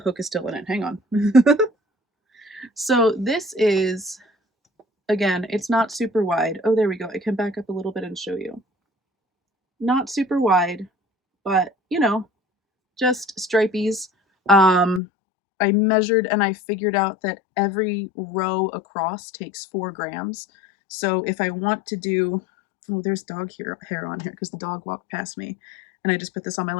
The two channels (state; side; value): drops out; right; at 15.0 s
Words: is still in it. Hang on. So this is, again, it's not super wide. Oh, there we go. I can back up a little bit and show you. Not super wide, but you know, just stripies. I measured and I figured out that every row across takes 4 grams. So if I want to do, oh, there's dog hair on here because the dog walked past me and I just put this on my